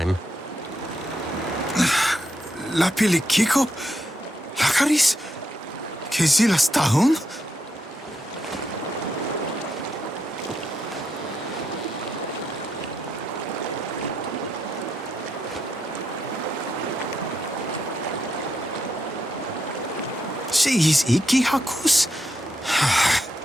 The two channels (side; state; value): both; normal; correlation 0.81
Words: La pili kiko? Lakaris? Kezila stahun? Is iki hakus?